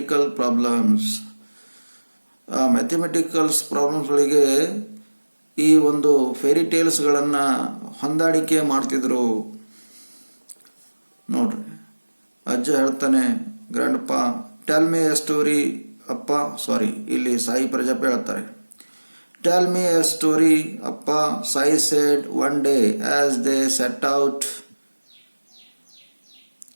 problems. ಆ ಮ್ಯಾಥಮೆಟಿಕಲ್ಸ್ ಪ್ರಾಬ್ಲಮ್ಸ್ಗಳಿಗೆ ಈ ಒಂದು ಫೇರಿ ಟೇಲ್ಸ್ಗಳನ್ನು ಹೊಂದಾಣಿಕೆ ಮಾಡ್ತಿದ್ರು. ನೋಡ್ರಿ, ಅಜ್ಜ ಹೇಳ್ತಾನೆ, ಗ್ರ್ಯಾಂಡ್ ಪಾ ಟೆಲ್ ಮಿ ಎ ಸ್ಟೋರಿ ಅಪ್ಪ, ಇಲ್ಲಿ ಸಾಯಿ ಪ್ರಜಾಪತಿ ಹೇಳ್ತಾರೆ, ಟೆಲ್ ಮಿ ಎ ಸ್ಟೋರಿ ಅಪ್ಪ, Sai shed one day as they set out.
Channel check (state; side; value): inverted; both; correlation -1.00